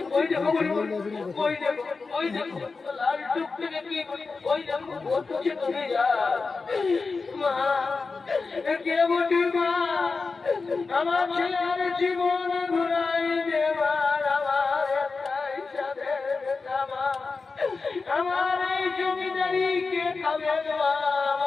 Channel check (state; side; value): quieter; right; 4.3 dB